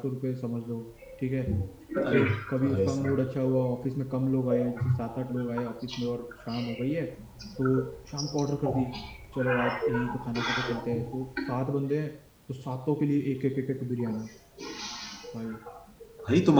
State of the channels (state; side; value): identical; both; correlation 1.00